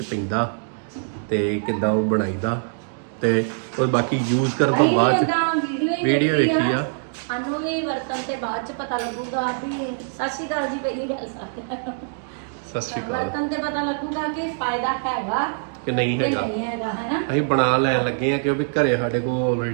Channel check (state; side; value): silent; left; digital silence